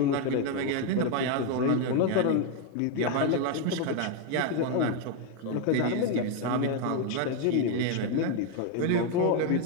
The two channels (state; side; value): different; both; correlation 0.01